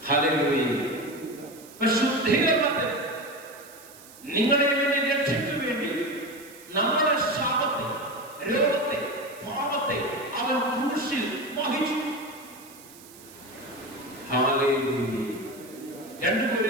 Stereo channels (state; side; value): noise; right; hiss, 21 dB below the sound